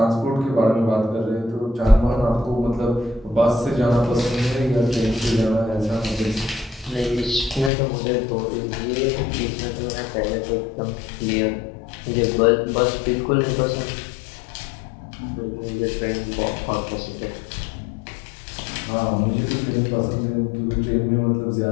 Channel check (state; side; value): drops out; right; at 7.7 s